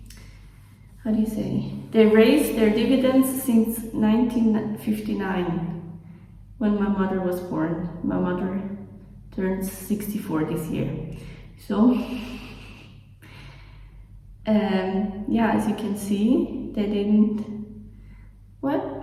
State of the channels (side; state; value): both; identical; correlation 1.00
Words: how do you say? They raised their dividends since 1959, when my mother was born. My mother turns 64 this year. So, yeah, as you can see, they didn't.